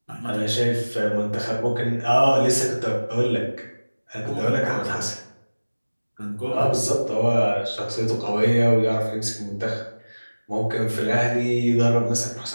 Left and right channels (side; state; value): both; inverted; correlation -1.00